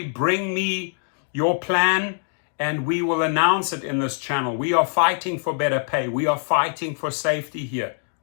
bring me your plan, and we will announce it in this channel. We are fighting for better pay. We are fighting for safety here,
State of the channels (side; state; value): right; silent; digital silence